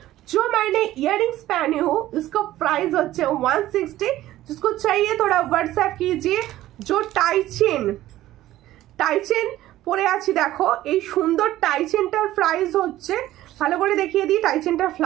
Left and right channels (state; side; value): quieter; left; 14.8 dB